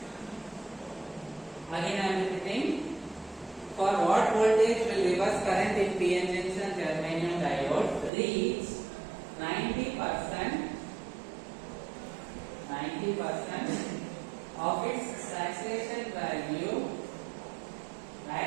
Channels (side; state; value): left; drops out; at 8.1 s